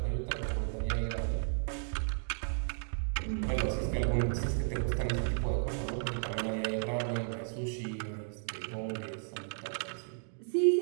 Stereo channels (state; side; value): silent; left; digital silence